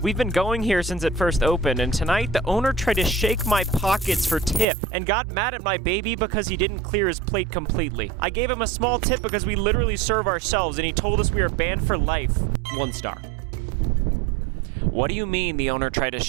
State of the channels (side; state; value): left; drops out; at 4.7 s